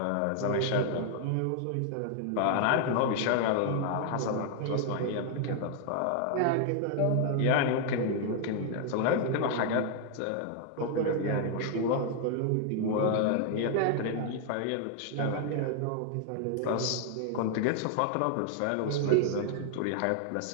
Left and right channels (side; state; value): both; different; correlation 0.00